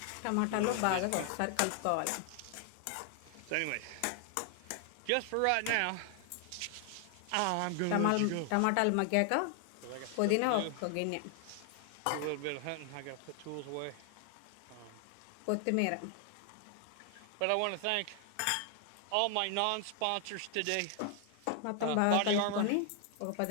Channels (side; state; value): both; different; correlation 0.00